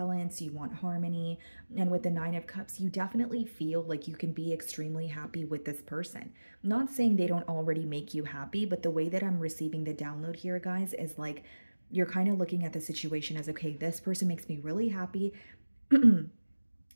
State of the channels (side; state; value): both; inverted; correlation -1.00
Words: You want harmony. And with the Nine of Cups, you definitely feel like you can be extremely happy with this person. I'm not saying they don't already make you happy, but the way that I'm receiving the download here, guys, is like you're kind of looking at the situation as, okay, this person makes me really happy.